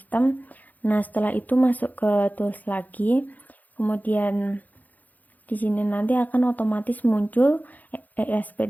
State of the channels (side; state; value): right; late; 0.081 ms